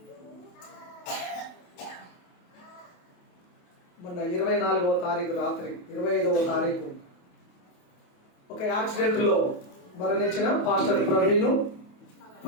మొన్న 24వ తారీఖు రాత్రి 25వ తారీఖు ఒక యాక్సిడెంట్ లో మరణించిన పాస్టర్ ప్రవీణ్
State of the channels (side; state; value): right; late; 28 ms